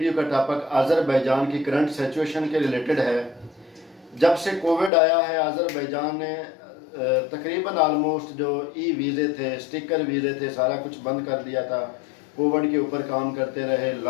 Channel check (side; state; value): right; drops out; at 4.9 s